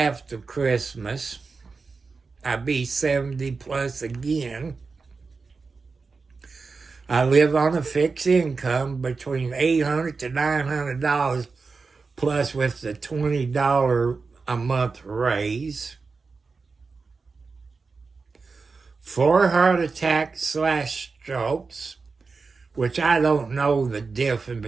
Christmas. I'll be 70 plus again. I live on a fixed income between $800 to $900 plus with the $20 a month raise. 4 heart attacks / strokes, which I don't know the difference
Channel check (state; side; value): quieter; left; 4.5 dB